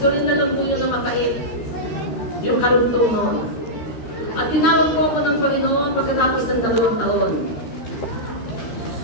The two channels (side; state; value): right; late; 13 ms